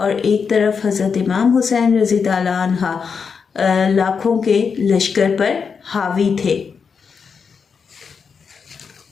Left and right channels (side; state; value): right; quieter; 5.9 dB